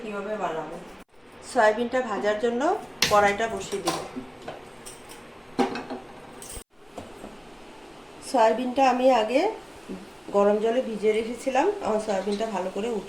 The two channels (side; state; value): both; identical; correlation 1.00